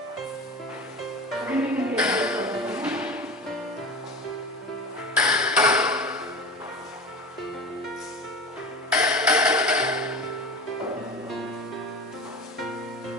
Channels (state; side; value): normal; both; correlation 0.31